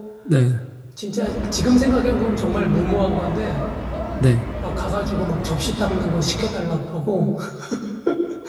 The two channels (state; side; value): identical; both; correlation 1.00